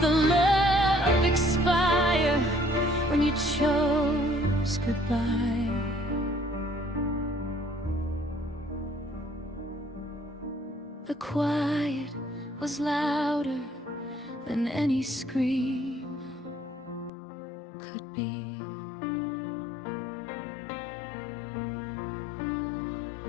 love expire. When you chose The quiet was louder than any scream could be.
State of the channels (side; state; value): right; drops out; at 17.1 s